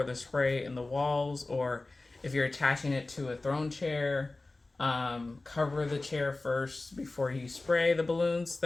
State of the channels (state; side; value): quieter; right; 3.1 dB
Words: the spray and the walls, or if you're attaching it to a throne chair, Cover the chair first before you spray the balloons